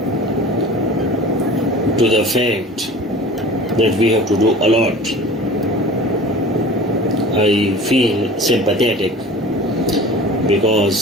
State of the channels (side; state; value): both; normal; correlation 0.40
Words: to the fact that we have to do a lot. I feel sympathetic